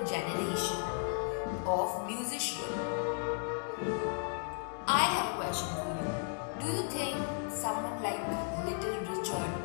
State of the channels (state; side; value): silent; right; 55 dB below the other